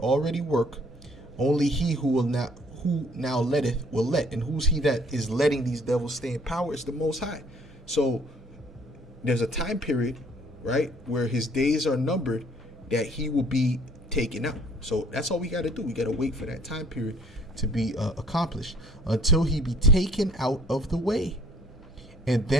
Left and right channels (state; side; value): normal; both; correlation 0.59